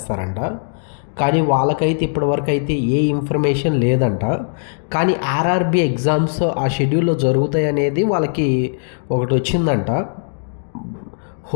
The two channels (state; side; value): silent; right; digital silence